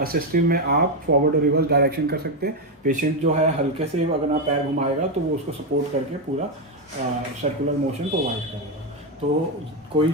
में आप फॉरवर्ड और रिवर्स डायरेक्शन कर सकते हैं। पेशेंट जो है हल्के से अगर आप पैर घुमाएगा तो वो उसको सपोर्ट करके पूरा सर्कुलर मोशन प्रोवाइड करेगा। तो कोई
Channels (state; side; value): normal; both; correlation 0.06